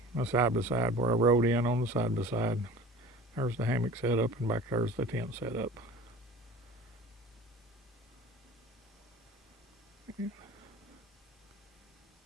my side-by-side where I rode in on the side-by-side. There's the hammock set up, and back there's the tent set up.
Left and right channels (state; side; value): normal; both; correlation 0.40